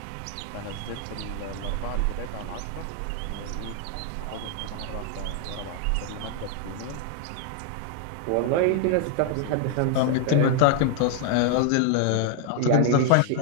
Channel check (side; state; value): both; different; correlation 0.00